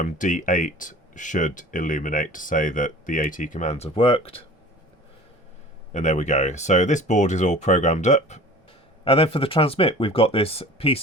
D8 should illuminate to say that the AT commands have worked. And there we go. So this board is all programmed up. And then for the transmit, we've got this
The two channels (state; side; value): normal; both; correlation 0.42